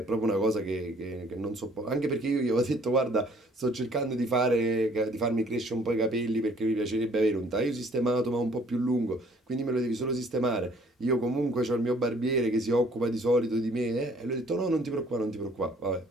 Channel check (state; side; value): normal; both; correlation 0.59